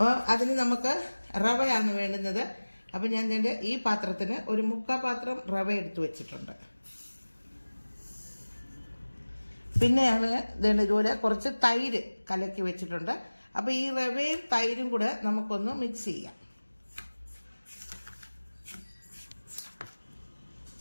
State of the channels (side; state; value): both; inverted; correlation -1.00